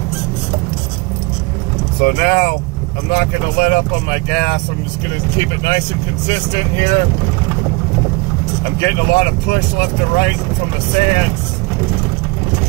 So now I'm not going to let up on my gas. I'm just going to keep it nice and consistent here. I'm getting a lot of push left and right from the sand.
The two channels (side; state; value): left; quieter; 26.2 dB